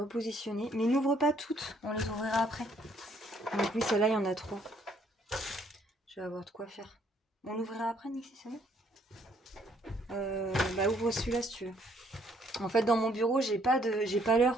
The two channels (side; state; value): both; normal; correlation 0.66